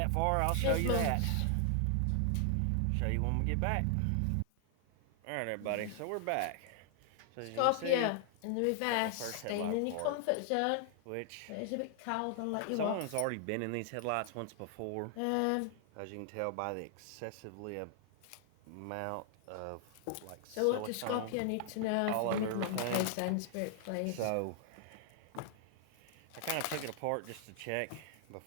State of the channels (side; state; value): both; different; correlation 0.00